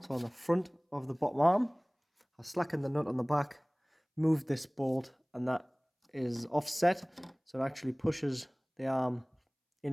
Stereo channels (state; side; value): identical; both; correlation 1.00